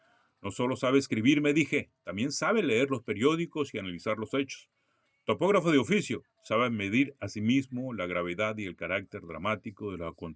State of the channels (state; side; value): identical; both; correlation 1.00